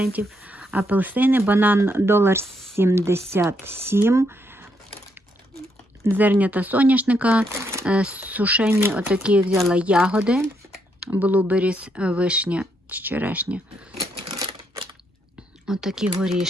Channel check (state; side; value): normal; both; correlation 0.76